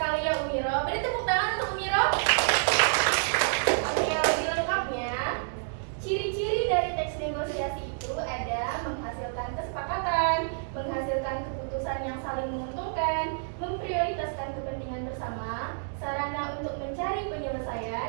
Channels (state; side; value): silent; left; digital silence